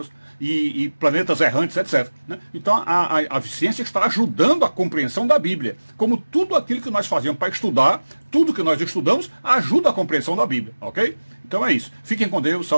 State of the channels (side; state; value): both; inverted; correlation -1.00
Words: e planetas errantes, etc. Né? Então a ciência está ajudando a compreensão da Bíblia. Como tudo aquilo que nós fazemos para estudar, tudo que nós estudamos ajuda a compreensão da Bíblia, ok? Então é isso. Fiquem com Deus,